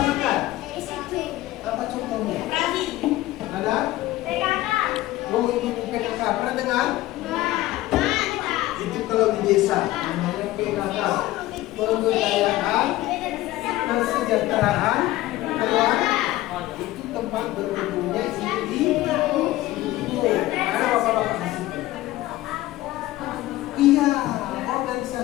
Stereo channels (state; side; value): quieter; right; 16.6 dB